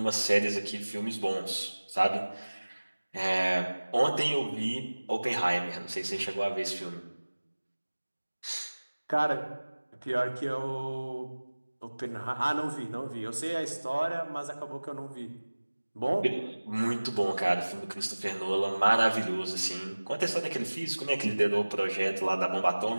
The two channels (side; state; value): both; inverted; correlation -1.00